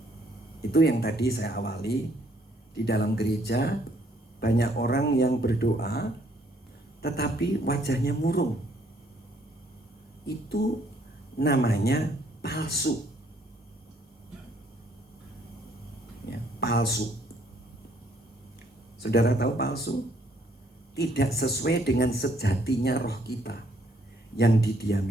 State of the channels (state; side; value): normal; both; correlation 0.66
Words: Itu yang tadi saya awali, di dalam gereja banyak orang yang berdoa tetapi wajahnya murung. Itu namanya palsu. Ya, palsu. Saudara tahu palsu? Tidak sesuai dengan sejatinya roh kita yang